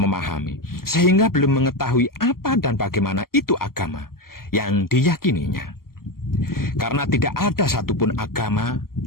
sehingga belum mengetahui apa dan bagaimana itu agama yang diyakininya. Karena tidak ada satupun agama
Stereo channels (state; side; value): late; right; 0.92 ms